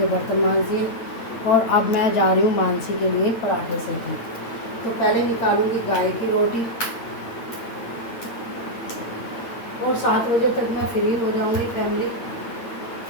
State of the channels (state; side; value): late; right; 8.9 ms